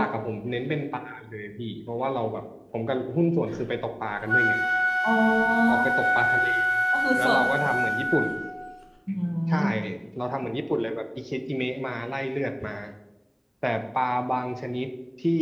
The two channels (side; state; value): both; identical; correlation 1.00